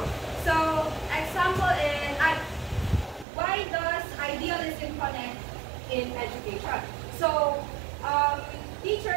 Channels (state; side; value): drops out; left; at 3.2 s